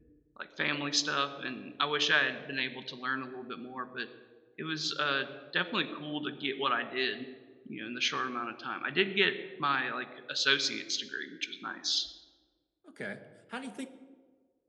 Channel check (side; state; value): both; identical; correlation 1.00